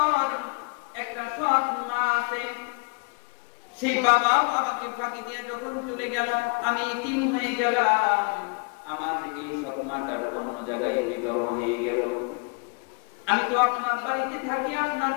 একটা সৎ মা আছে, সেই বাবাও আমাকে ফাঁকি দিয়ে যখন চলে গেল, আমি ইতিম হয়ে গেলাম। আমার এই সৎ মাটার অন্য জায়গায় বিবাহ হয়ে গেল। আমি তো আপনার বাড়িতে থাকি, আপনার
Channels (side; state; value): right; quieter; 33.7 dB